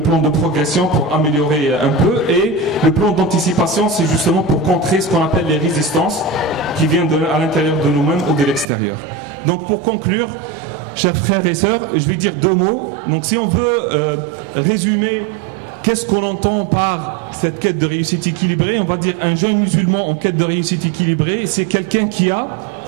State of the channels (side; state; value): left; drops out; at 8.7 s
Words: plan de progression pour améliorer un peu. Et le plan d'anticipation, c'est justement pour contrer ce qu'on appelle les résistances qui viennent à l'intérieur de nous-mêmes ou de l'extérieur. Donc pour conclure, chers frères et sœurs, je vais dire 2 mots. Donc si on veut résumer qu'est-ce qu'on entend par cette quête de réussite équilibrée, on va dire un jeune musulman en quête de réussite équilibrée, c'est quelqu'un qui a,